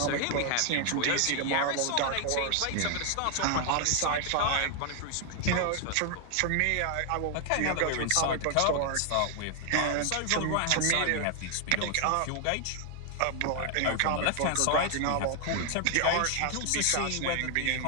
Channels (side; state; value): both; different; correlation 0.00